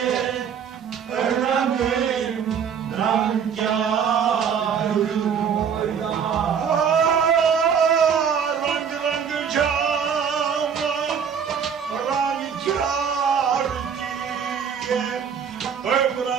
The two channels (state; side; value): quieter; left; 7.2 dB